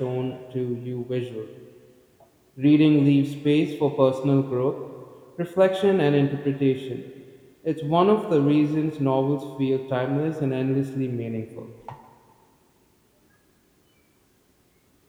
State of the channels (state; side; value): identical; both; correlation 1.00